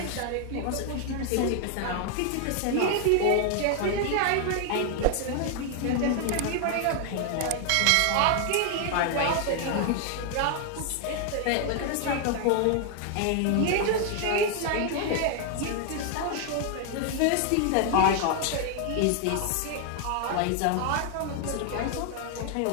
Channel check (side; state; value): both; different; correlation 0.00